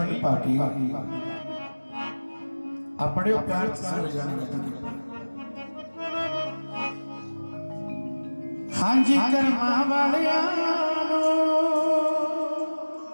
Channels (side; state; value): both; inverted; correlation -1.00